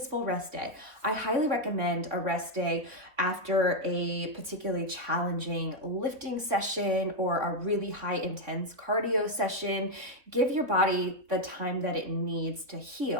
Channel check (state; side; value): late; left; 3.8 ms